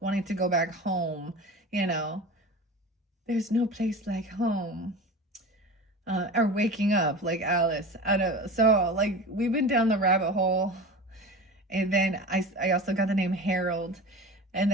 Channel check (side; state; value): both; normal; correlation 0.33